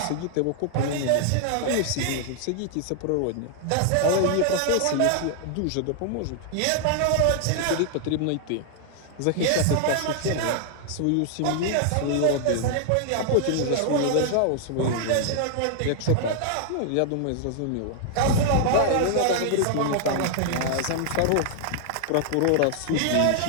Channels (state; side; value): different; both; correlation 0.00